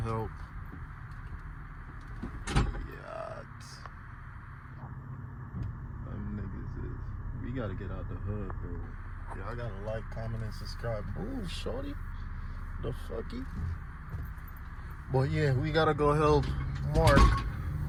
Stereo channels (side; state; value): both; identical; correlation 1.00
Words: Them niggas is. We gotta get out the hood, bro. Yeah, I gotta like, comment, and subscribe. Ooh, shorty. The fucky. But yeah, we gotta go help Mark.